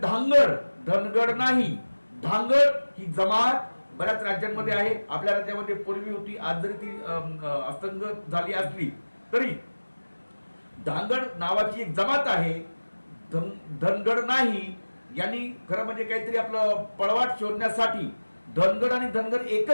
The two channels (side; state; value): both; inverted; correlation -1.00